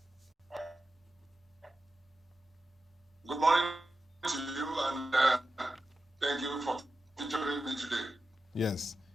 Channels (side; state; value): both; normal; correlation 0.92